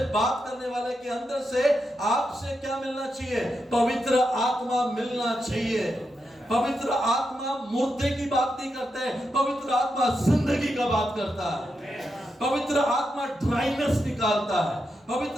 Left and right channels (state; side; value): normal; both; correlation 0.85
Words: बात करने वाले के अंदर से आपसे क्या मिलना चाहिए? पवित्र आत्मा मिलना चाहिए। पवित्र आत्मा मुर्दे की बात नहीं करता है, पवित्र आत्मा जिंदगी का बात करता है। पवित्र आत्मा ड्राइनेस निकालता है,